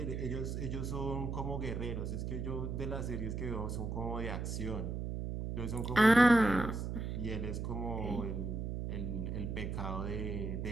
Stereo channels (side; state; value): right; noise; hum, 3 dB below the sound